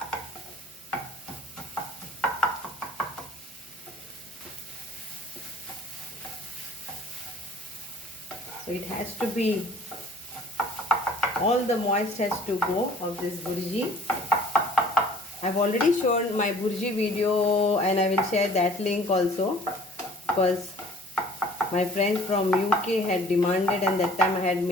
So it has to be, all the moist has to go of this burji. I've already shown my burji video and I will share that link also, because my friends from UK had demanded and that time I had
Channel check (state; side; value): normal; both; correlation 0.51